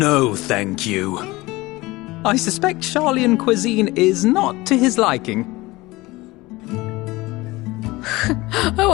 thank you." I suspect Charlian cuisine is not to his liking. Oh,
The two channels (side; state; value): right; quieter; 20.7 dB